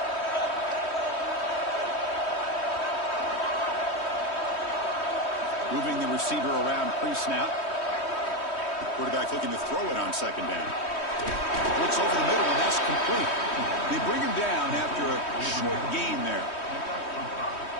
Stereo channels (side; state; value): right; late; 3.1 ms